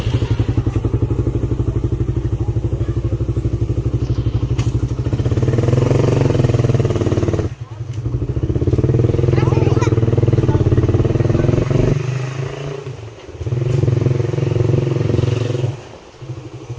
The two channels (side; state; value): both; identical; correlation 1.00